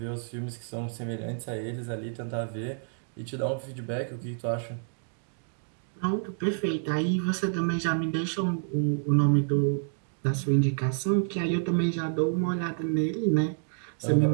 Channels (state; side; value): silent; left; digital silence